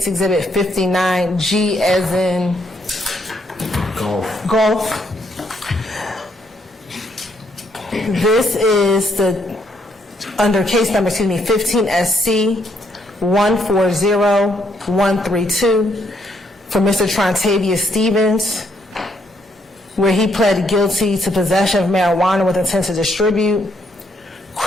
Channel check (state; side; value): normal; both; correlation 0.73